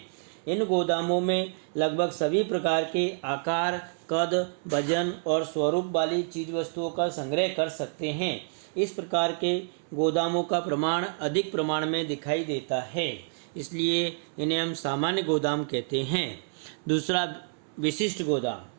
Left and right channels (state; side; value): silent; left; 59 dB below the other